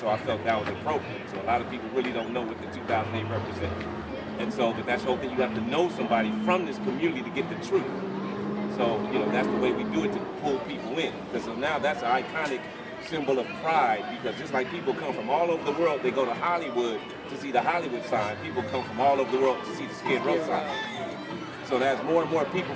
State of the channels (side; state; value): both; identical; correlation 1.00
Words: I felt that was appropriate. So a lot of people really don't know what the 2008 represents. And so, but that's the whole thing. You have to know somebody from this community to get the truth. So, that's the way we do it to pull people in. Because so now that's an iconic symbol of pride. Because just like people come from all over the world, they go to Hollywood to see the Hollywood sign. People come from all over the world to see the Skid Row sign. So as more and more people